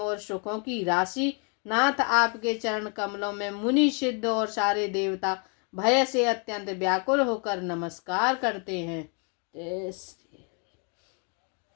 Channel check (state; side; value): quieter; right; 38.1 dB